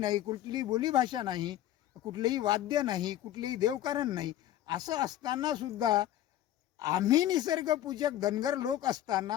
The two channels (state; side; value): quieter; right; 12.9 dB